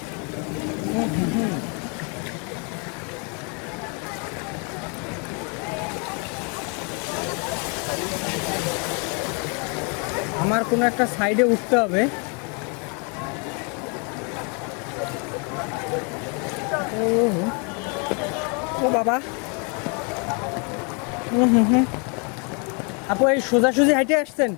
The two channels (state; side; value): quieter; right; 35.6 dB